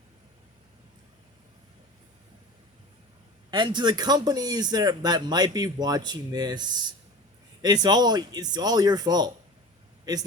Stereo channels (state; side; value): normal; both; correlation 0.35